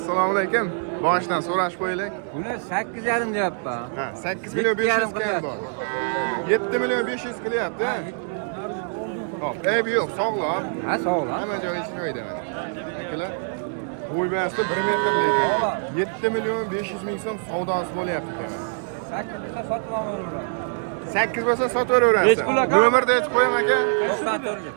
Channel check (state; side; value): silent; left; digital silence